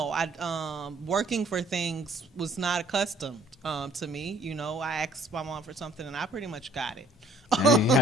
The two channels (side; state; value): both; normal; correlation 0.59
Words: I working for things was not accustomed to me. You know, I asked my mom for something and I pretty much got it. Dang, you